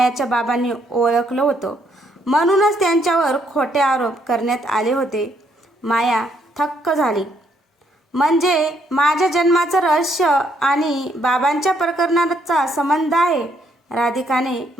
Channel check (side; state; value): both; normal; correlation 0.71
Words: बाबांनी ओळखलं होतं, म्हणूनच त्यांच्यावर खोटे आरोप करण्यात आले होते. माया थक्क झाली. म्हणजे माझ्या जन्माचं रहस्य आणि बाबांच्या प्रकरणाचा संबंध आहे? राधिकाने